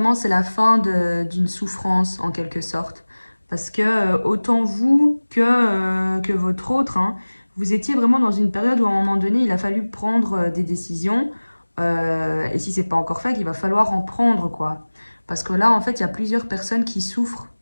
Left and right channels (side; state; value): both; inverted; correlation -1.00